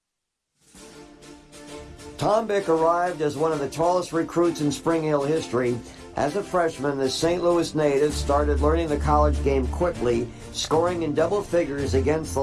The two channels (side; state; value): both; identical; correlation 1.00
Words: Tom Bick arrived as one of the tallest recruits in Spring Hill history, As a freshman, the St. Louis native started learning the college game quickly, scoring in double figures against the